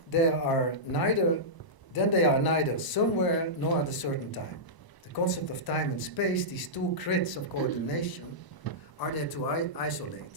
they are neither somewhere nor at a certain time. The concept of time and space, these two grids of coordination, are there to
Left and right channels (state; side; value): late; right; 1.0 ms